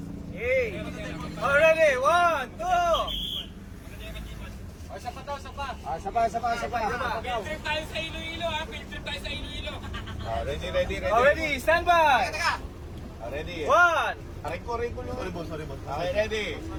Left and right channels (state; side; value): identical; both; correlation 1.00